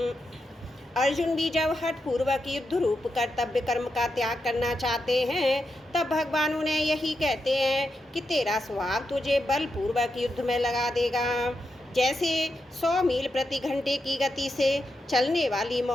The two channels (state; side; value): normal; both; correlation 0.86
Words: अर्जुन भी जब हठ पूर्वक युद्ध रूप कर्तव्य कर्म का त्याग करना चाहते हैं तब भगवान उन्हें यही कहते हैं कि तेरा स्वभाव तुझे बलपूर्वक युद्ध में लगा देगा। जैसे 100 मील प्रति घंटे की गति से चलने वाली